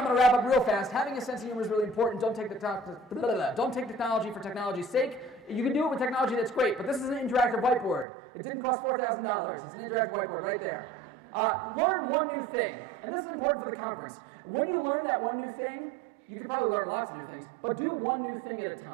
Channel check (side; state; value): left; drops out; at 8.1 s